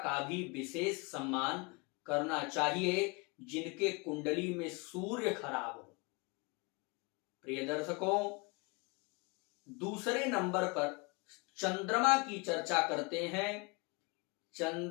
भी विशेष सम्मान करना चाहिए जिनके कुंडली में सूर्य खराब हो। प्रिय दर्शकों, दूसरे नंबर पर चंद्रमा की चर्चा करते हैं।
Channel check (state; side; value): quieter; right; 28.9 dB